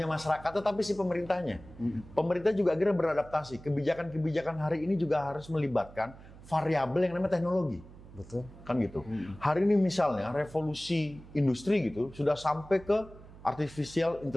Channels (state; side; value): noise; right; hum, 19 dB below the sound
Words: masyarakat, tetapi si pemerintahnya. Pemerintah juga akhirnya beradaptasi. Kebijakan-kebijakan hari ini juga harus melibatkan variabel yang namanya teknologi. Betul. Kan gitu. Hari ini misalnya revolusi industri gitu sudah sampai ke artificial